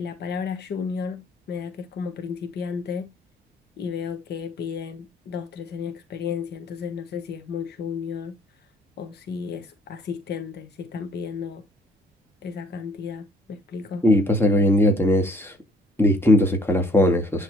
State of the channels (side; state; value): both; normal; correlation 0.59